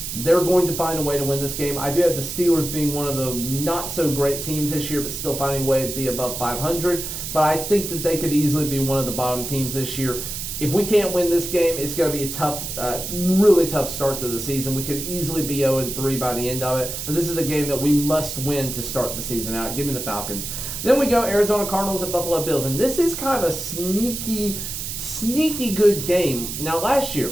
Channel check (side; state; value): right; noise; hiss, 6 dB below the sound